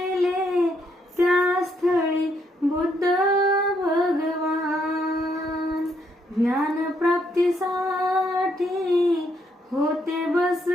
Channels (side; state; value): both; normal; correlation 0.74